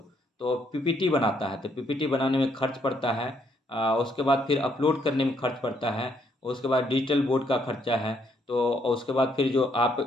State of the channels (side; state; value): both; normal; correlation 0.71